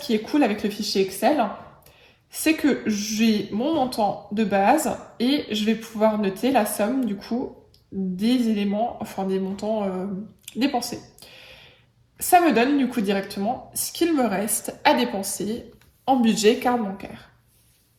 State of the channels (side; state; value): both; identical; correlation 1.00